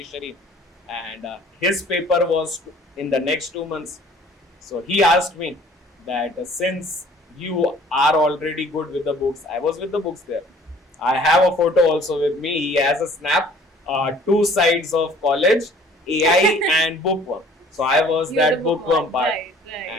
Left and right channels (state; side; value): normal; both; correlation 0.53